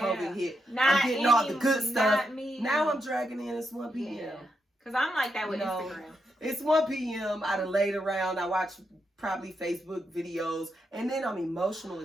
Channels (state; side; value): normal; both; correlation 0.82